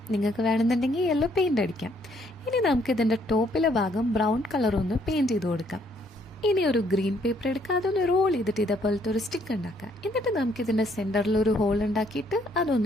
നിങ്ങൾക്ക് വേണമെന്നുണ്ടെങ്കിൽ യെല്ലോ പെയിന്റ് അടിക്കാം. ഇനി നമുക്ക് ഇതിന്റെ ടോപ്പിലെ ഭാഗം ബ്രൗൺ കളർ ഒന്ന് പെയിന്റ് ചെയ്ത് കൊടുക്കാം. ഇനി ഒരു ഗ്രീൻ പേപ്പർ എടുക്കുക. അതൊന്ന് റോൾ ചെയ്തിട്ട് ഇതേപോലത്തെ ഒരു സ്റ്റിക്ക് ഉണ്ടാക്കാം. എന്നിട്ട് നമുക്ക് ഇതിന്റെ സെന്ററിൽ ഒരു ഹോൾ ഉണ്ടാക്കിയിട്ട്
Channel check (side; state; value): both; normal; correlation 0.67